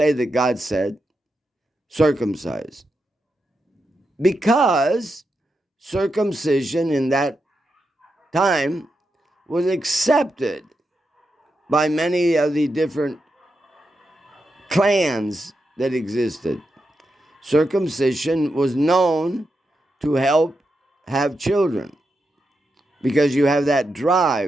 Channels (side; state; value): both; normal; correlation 0.86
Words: that God said, circumcise. Because circumcision in that time was accepted by many of the different clans that existed. Circumcision was known to help have children because you have that